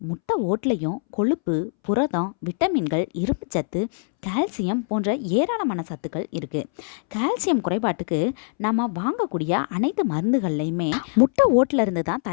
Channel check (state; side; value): silent; right; 63 dB below the other